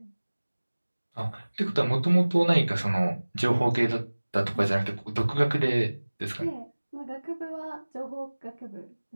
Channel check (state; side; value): inverted; both; correlation -1.00